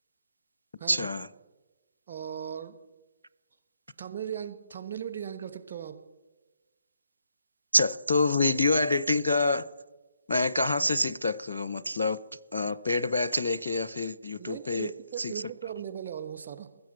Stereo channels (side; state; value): both; inverted; correlation -0.77